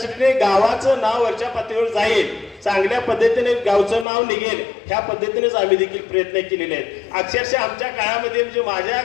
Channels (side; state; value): right; drops out; at 4.0 s